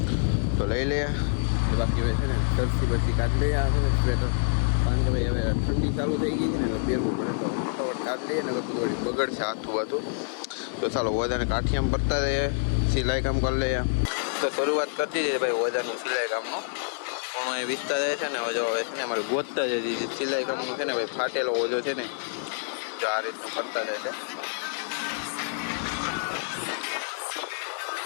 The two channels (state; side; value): silent; right; 60 dB below the other